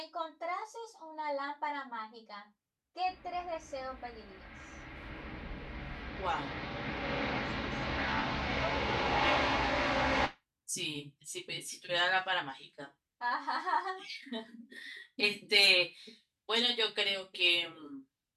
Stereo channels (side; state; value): both; identical; correlation 1.00